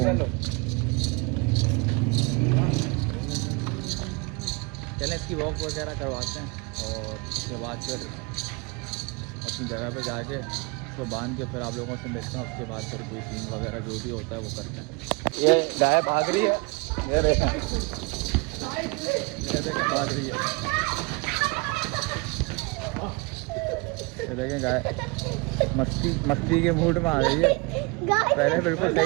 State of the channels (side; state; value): left; quieter; 28.2 dB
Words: चलें इसकी वॉक वगैरह करवाते हैं, और उसके बाद फिर अपनी जगह पे जाके उसको बांध के फिर आप लोगों से मिलते हैं। उसके बाद फिर कोई सीन वगैरह जो भी होता है वो करते हैं। ये गाय भाग रही है, ये देखें भाग रही है, ये देखें गाय मस्ती के मूड में आ रही है। पहले बिल्कुल